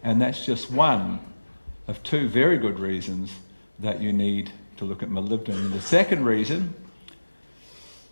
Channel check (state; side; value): inverted; both; correlation -1.00